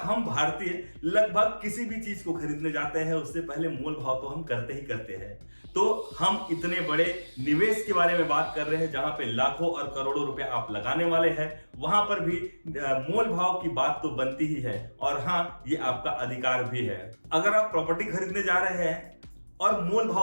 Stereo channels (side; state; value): both; inverted; correlation -1.00